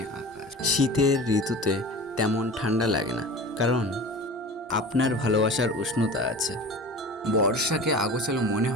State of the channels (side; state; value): both; normal; correlation 0.36